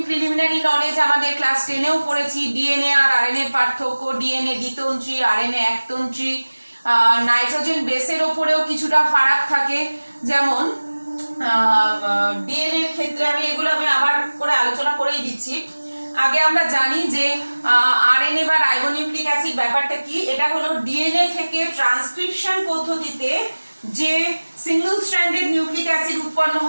প্রিলিমিনারি নলেজ আমাদের ক্লাস 10এও পড়েছি। ডিএনএ আর আরএনএ পার্থক্য, ডিএনএ দ্বিতন্ত্রী, আরএনএ একতন্ত্রী, নাইট্রোজেন বেসের ওপরেও কিছুটা ফারাক থাকে। যেমন ডিএনএ এর ক্ষেত্রে আমি আবার করে আলোচনা করেই দিচ্ছি। আগে আমরা জানি যে আরএনএ বা রাইবোনিউক্লিক অ্যাসিড ব্যাপারটা কি। এটা হলো ডিএনএ থেকে ট্রান্সক্রিপশন পদ্ধতিতে যে সিঙ্গেল স্ট্র্যান্ডেড নিউক্লিক অ্যাসিড উৎপন্ন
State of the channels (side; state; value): both; inverted; correlation -1.00